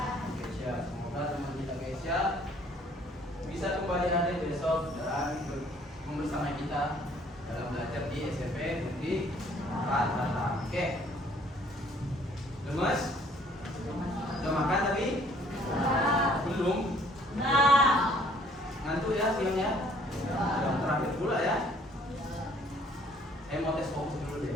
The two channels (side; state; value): both; normal; correlation 0.60